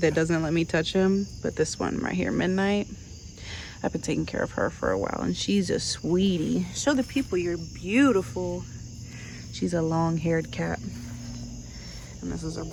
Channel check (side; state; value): both; identical; correlation 1.00